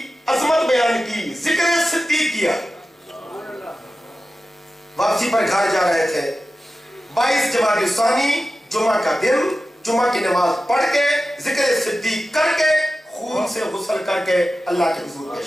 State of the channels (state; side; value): normal; both; correlation 0.93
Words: عظمت بیان کی, ذکر صدیق کیا. واپسی پر گھر جا رہے تھے, 22 جمادی الثانی جمعہ کا دن, جمعہ کی نماز پڑھ کے ذکر صدیق کر کے خون سے غسل کر کے اللہ کے حضور